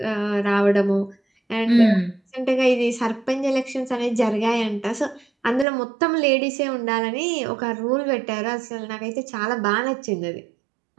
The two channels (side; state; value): left; drops out; at 5.7 s